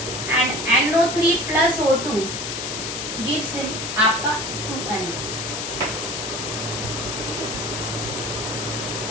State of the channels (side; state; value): left; noise; hiss, 4 dB below the sound